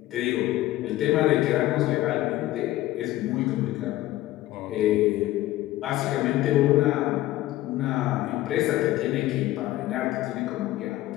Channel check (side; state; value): right; quieter; 15.9 dB